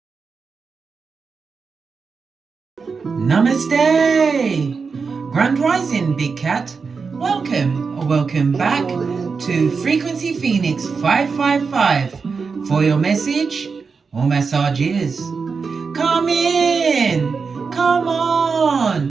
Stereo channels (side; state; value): left; quieter; 5.1 dB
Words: Namaste! Grand Rising, Big Cat. Welcome or welcome back to Frequency Phoenix 555 for your message or messages. Come in! Come